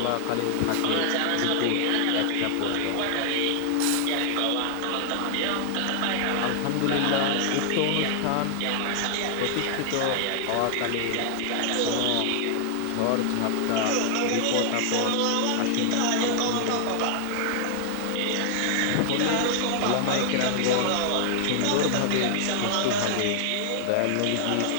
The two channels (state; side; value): different; both; correlation 0.00